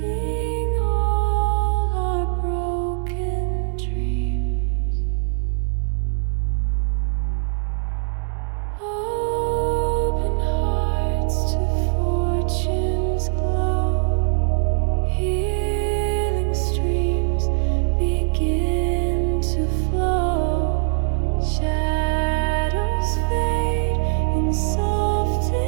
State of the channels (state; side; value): silent; left; digital silence